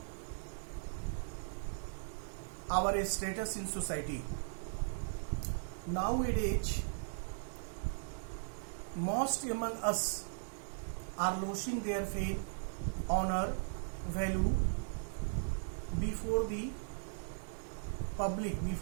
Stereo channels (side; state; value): left; silent; digital silence